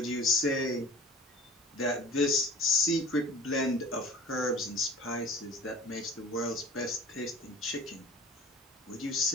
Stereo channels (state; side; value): normal; both; correlation 0.43